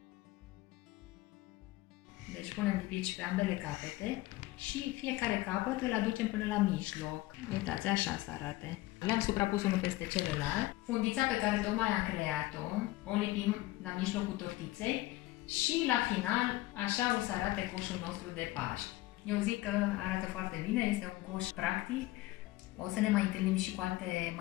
Deci punem lipici pe ambele capete și fiecare capăt îl aducem până la mijloc. Uitați, așa să arate. Le-am suprapus unul peste celălalt. Fundița pe care tocmai am creat-o, o lipim la mijlocul tortiței și la final așa o să arate coșul nostru de Paști. Eu zic că arată foarte bine, este un coș practic. O să ne mai întâlnim și cu alte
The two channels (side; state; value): right; quieter; 18.2 dB